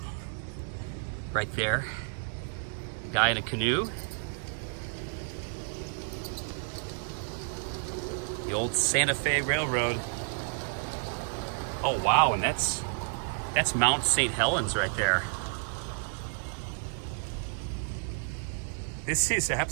right there. Guy in a canoe. The old Santa Fe Railroad. Oh wow, and that's Mount St. Helens right there. This is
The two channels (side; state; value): left; silent; digital silence